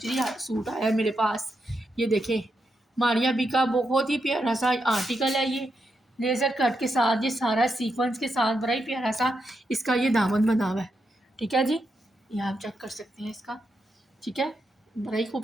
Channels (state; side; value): normal; both; correlation 0.84